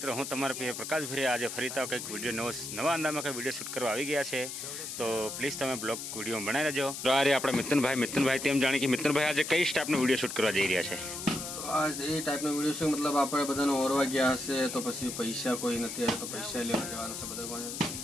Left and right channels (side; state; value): left; noise; hiss, 7 dB below the sound